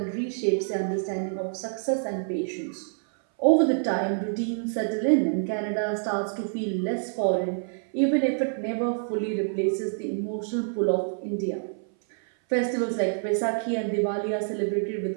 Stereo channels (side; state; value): left; silent; 58 dB below the other